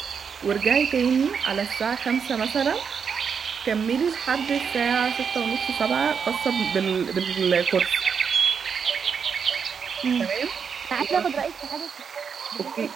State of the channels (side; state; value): left; quieter; 6.5 dB